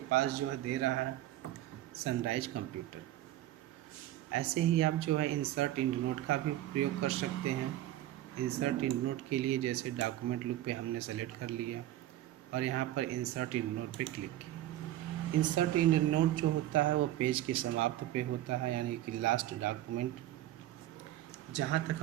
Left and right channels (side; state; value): left; quieter; 14.0 dB